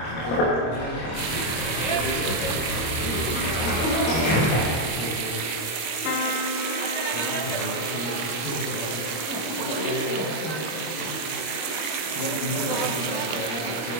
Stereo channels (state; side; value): late; right; 25 ms